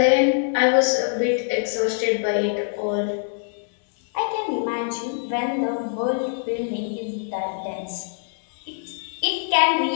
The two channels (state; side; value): silent; right; 63 dB below the other